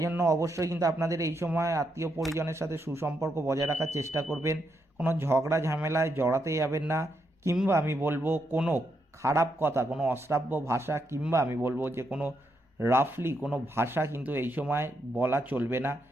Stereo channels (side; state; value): both; normal; correlation 0.80